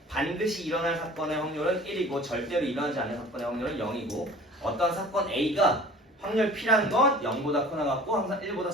반드시 일어날 사건의 확률은 1이고 절대로 일어나지 않는 사건의 확률은 0이고 어떤 사건 A가 확률 P라는 건 0보다 크거나 같고 항상 1보다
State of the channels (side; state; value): both; normal; correlation 0.45